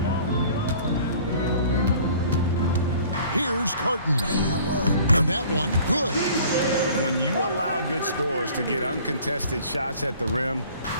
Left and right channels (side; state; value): both; inverted; correlation -0.51